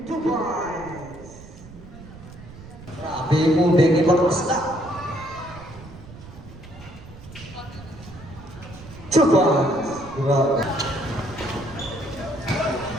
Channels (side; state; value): right; noise; rumble, 17 dB below the sound